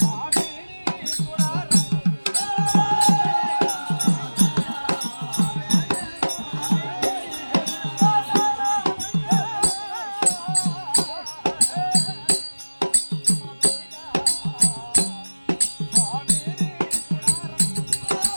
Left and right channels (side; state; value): both; inverted; correlation -1.00